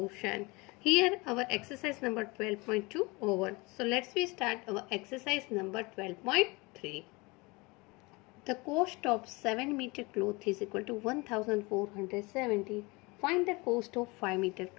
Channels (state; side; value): quieter; right; 25.6 dB